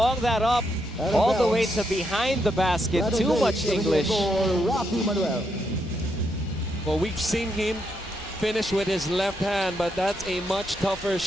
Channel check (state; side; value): normal; both; correlation 0.79